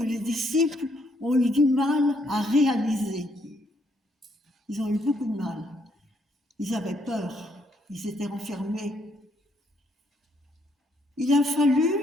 les disciples ont eu du mal à réaliser. Ils ont eu beaucoup de mal. Ils avaient peur. Ils étaient renfermés. Il a fallu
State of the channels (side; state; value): both; normal; correlation 0.72